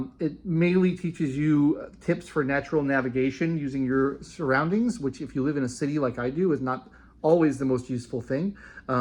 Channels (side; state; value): both; identical; correlation 1.00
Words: It mainly teaches you tips for natural navigation using your surroundings, which if you live in a city like I do is not always the most useful thing,